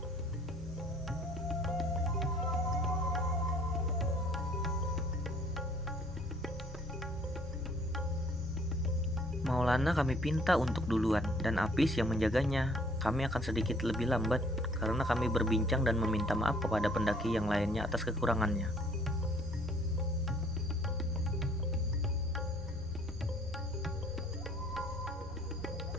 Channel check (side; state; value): both; normal; correlation 0.59